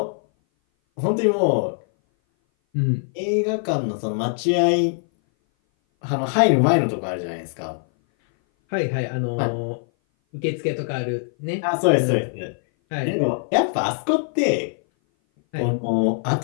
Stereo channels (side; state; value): right; silent; 58 dB below the other